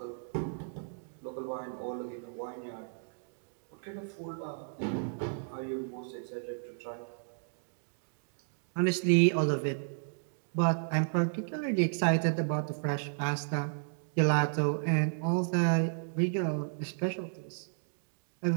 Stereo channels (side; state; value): left; silent; digital silence